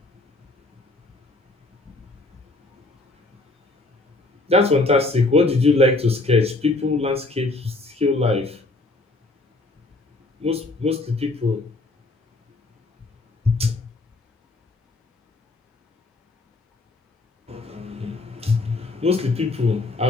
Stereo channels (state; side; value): quieter; right; 3.1 dB